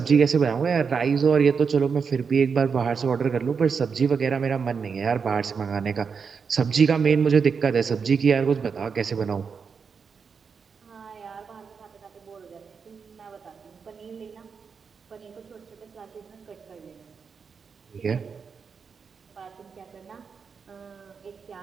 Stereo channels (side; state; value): left; quieter; 5.8 dB